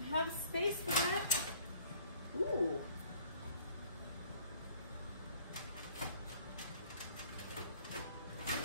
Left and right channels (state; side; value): inverted; both; correlation -0.56